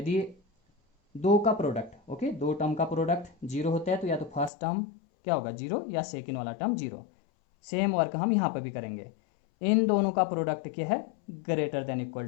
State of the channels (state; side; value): drops out; right; at 4.5 s